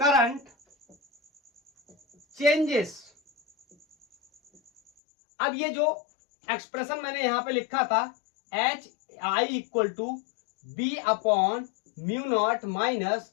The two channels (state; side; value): drops out; right; at 4.9 s